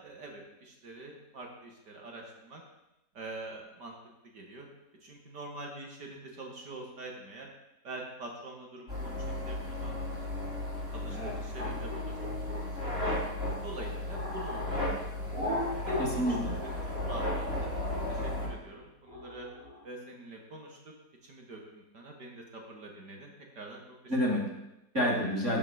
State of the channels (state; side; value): late; left; 4.2 ms